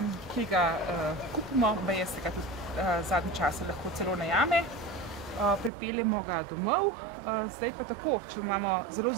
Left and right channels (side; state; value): left; drops out; at 5.7 s